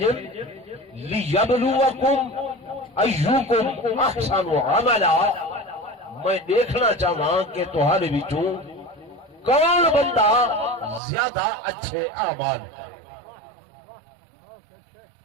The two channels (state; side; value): drops out; left; at 11.0 s